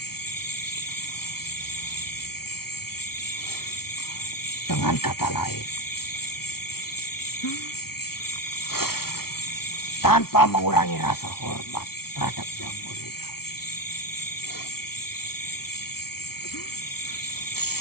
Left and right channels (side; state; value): right; late; 0.94 ms